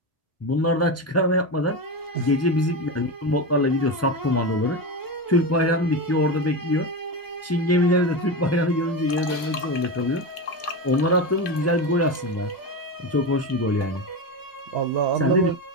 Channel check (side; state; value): both; normal; correlation 0.18